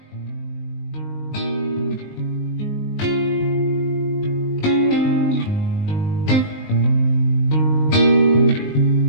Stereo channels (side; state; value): right; late; 19 ms